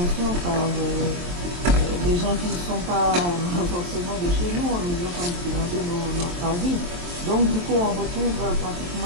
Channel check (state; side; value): late; left; 23 ms